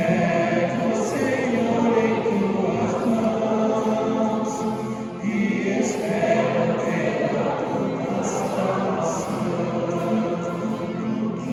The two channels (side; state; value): both; identical; correlation 1.00